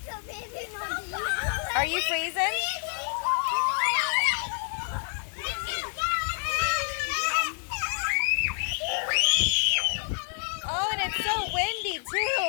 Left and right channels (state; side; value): silent; right; 59 dB below the other